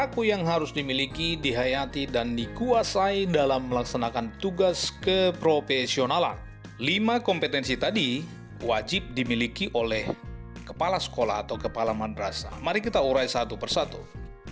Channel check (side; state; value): both; identical; correlation 1.00